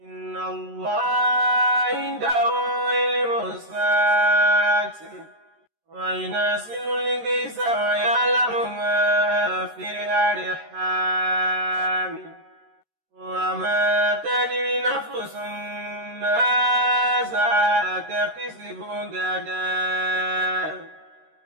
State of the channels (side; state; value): left; late; 13 ms